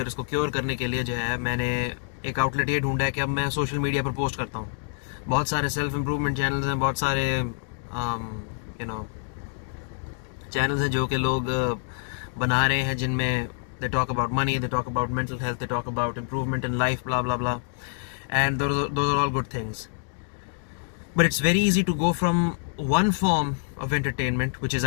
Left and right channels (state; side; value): silent; right; digital silence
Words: और इसको क्योर करने के लिए जो है, मैंने एक आउटलेट ये ढूंढा है कि अब मैं सोशल मीडिया पर पोस्ट करता हूँ। बहुत सारे सेल्फ इम्प्रूवमेंट चैनल्स हैं, बहुत सारे चैनल्स हैं जो कि लोग बना रहे हैं, जिनमें they talk about money, they talk about mental health, they talk about improvement in life, blah blah blah, and those are all good things. But it's very easy to go from one form of entertainment, which is